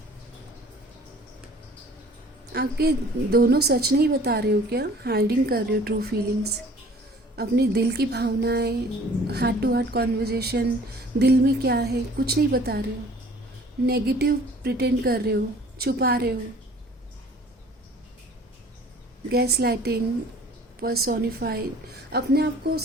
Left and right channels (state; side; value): normal; both; correlation 0.51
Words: आपके दोनों सच नहीं बता रहे हो क्या? हाइडिंग कर रहे हो ट्रू फीलिंग्स, अपनी दिल की भावनाएं, हार्ट टू हार्ट कॉन्वर्जेशन, दिल में क्या है कुछ नहीं बता रहे हो, नेगेटिव प्रिटेंड कर रहे हो, छुपा रहे हो, गैस लाइटिंग, पर्सोनिफाइड, अपने आप को